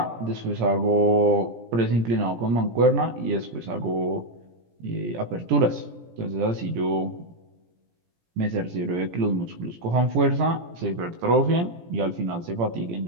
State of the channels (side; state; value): left; late; 17 ms